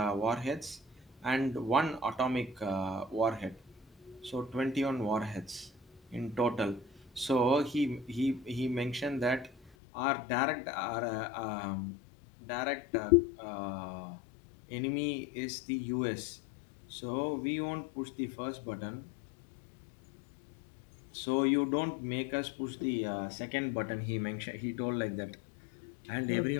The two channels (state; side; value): drops out; right; at 9.7 s